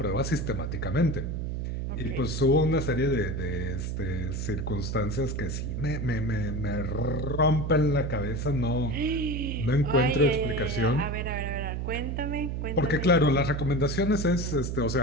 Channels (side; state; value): right; noise; hum, 3 dB below the sound